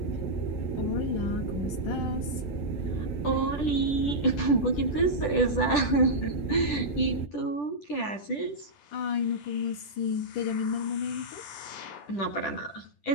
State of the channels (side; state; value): right; late; 10 ms